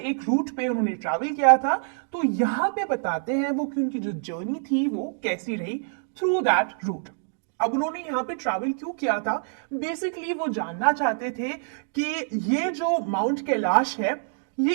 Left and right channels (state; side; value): silent; left; digital silence